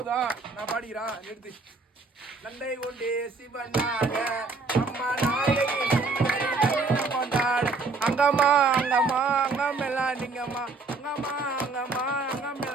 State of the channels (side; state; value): left; quieter; 3.9 dB